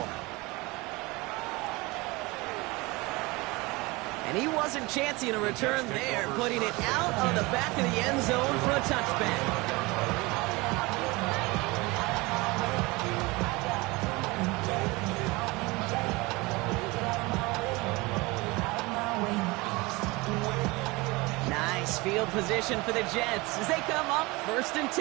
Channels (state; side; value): quieter; left; 23.6 dB